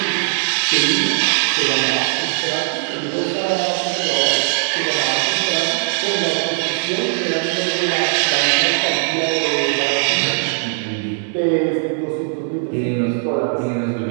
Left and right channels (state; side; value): silent; left; digital silence